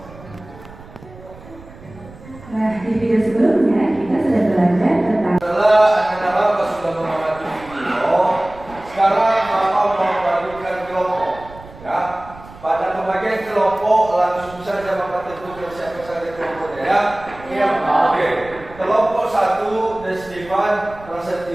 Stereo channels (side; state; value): right; noise; rumble, 19 dB below the sound